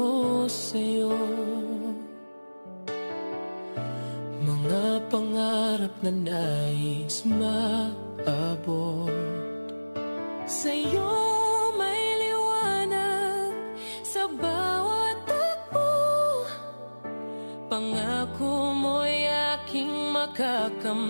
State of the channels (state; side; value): inverted; both; correlation -1.00